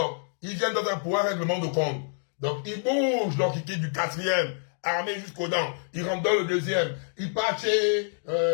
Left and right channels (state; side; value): silent; right; digital silence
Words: ils viennent dans un pouvoir règlement de compte. Donc, ils bougent, donc ils quittent du 4e, armés jusqu'aux dents. Ils rentrent dans le 2e. Ils partent chez